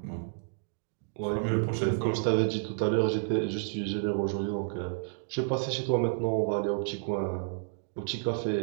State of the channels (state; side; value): silent; left; digital silence